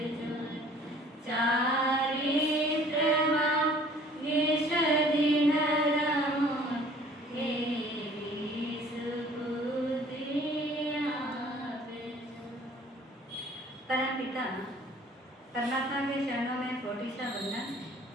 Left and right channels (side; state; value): both; normal; correlation 0.53